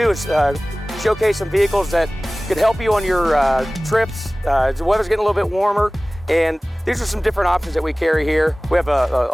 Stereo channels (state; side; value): normal; both; correlation 0.98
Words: is showcase some vehicles that could help you on your trips. The weather's getting a little bit warmer, and these are some different options that we carry here. We have